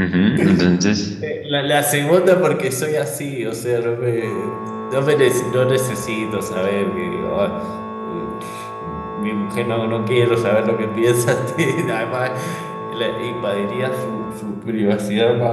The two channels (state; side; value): identical; both; correlation 1.00